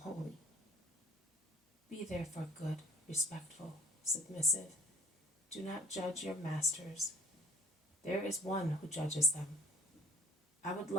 holy. Be therefore good, respectful, submissive. Do not judge your masters. There is one who judges them. I would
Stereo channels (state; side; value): normal; both; correlation 0.48